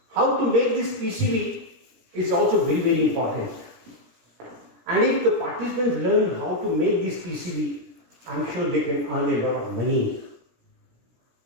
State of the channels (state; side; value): late; left; 17 ms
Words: How to make this PCB is also very, very important. And if the participants learn how to make this PCB, I am sure they can earn a lot of money.